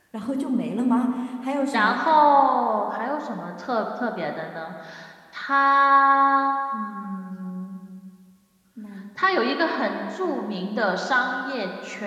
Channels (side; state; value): both; identical; correlation 1.00